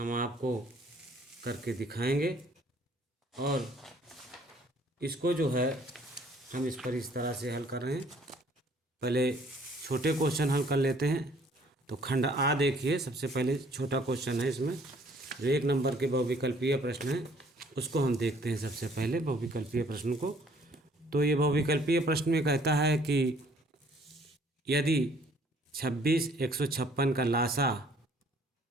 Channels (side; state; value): both; normal; correlation 0.59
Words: आपको करके दिखाएंगे और इसको जो है हम इस पर इस तरह से हल कर रहे हैं। पहले छोटे क्वेश्चन हल कर लेते हैं। तो खंड आ देखिए, सबसे पहले छोटा क्वेश्चन है इसमें जो 1 नंबर के बहुविकल्पीय प्रश्न है उसको हम देखते हैं। सबसे पहले बहुविकल्पीय प्रश्न को, तो ये बहुविकल्पीय प्रश्न में कहता है कि यदि 26 156 का लासा